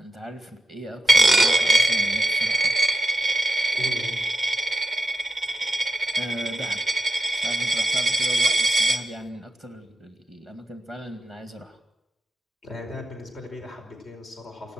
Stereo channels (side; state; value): both; normal; correlation 0.87